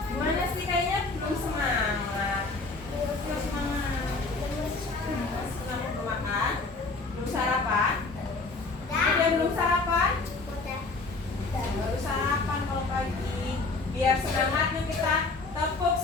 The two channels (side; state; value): right; quieter; 3.6 dB